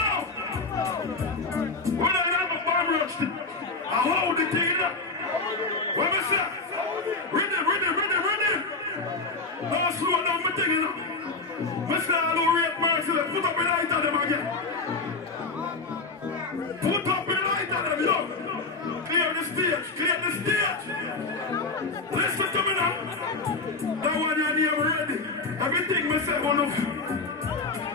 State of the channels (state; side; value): quieter; right; 3.8 dB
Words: When I have a bomb rush, I hold the thing up. What me say? Ready. Don't slow down my thing, you know. Me say I don't rate Merciless. Put up the light on them again. Put up the light on them, yo. Clear the stage. Listen to me now. That one your name ready. Everything me say, one of you.